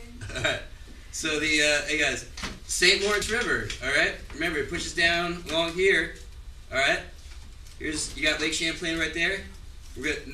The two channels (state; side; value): identical; both; correlation 1.00